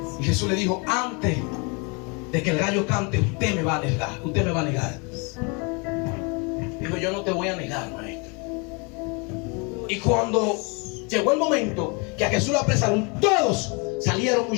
Y Jesús le dijo: antes de que el gallo cante, usted me va a negar. Usted me va a negar. Dijo: yo no te voy a negar, maestro. Y cuando llegó el momento que a Jesús lo apresaron, todos salieron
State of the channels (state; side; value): quieter; right; 32.0 dB